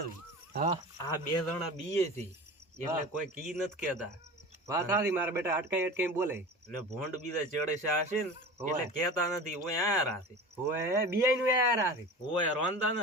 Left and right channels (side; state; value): both; normal; correlation 0.34